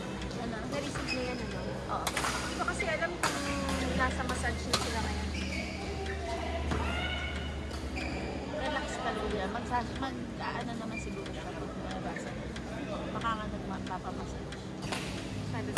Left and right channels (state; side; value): identical; both; correlation 1.00